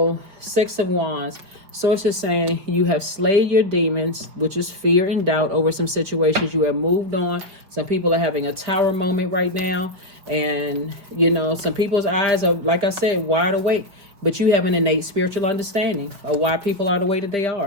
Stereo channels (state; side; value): late; left; 5.2 ms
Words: Six of Wands. Source is saying you have slayed your demons, which is fear and doubt over some situations. You have moved on. Some people are having a tower moment right now. And, you know, some people's eyes are, like I said, wide awake. But you have an innate spiritual understanding of why people are the way that they